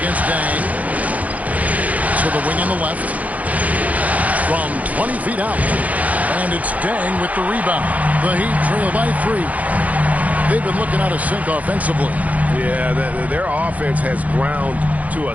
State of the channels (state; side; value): late; left; 0.072 ms